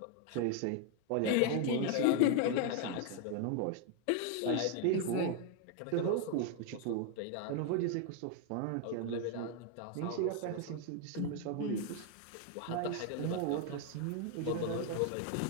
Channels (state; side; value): different; both; correlation 0.01